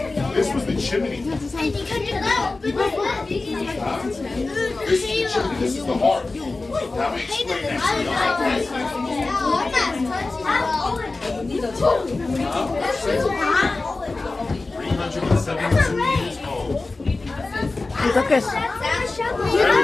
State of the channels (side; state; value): right; quieter; 3.4 dB